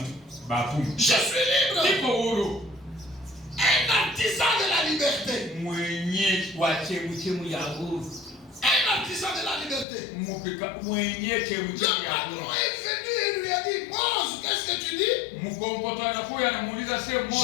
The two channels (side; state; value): right; drops out; at 9.9 s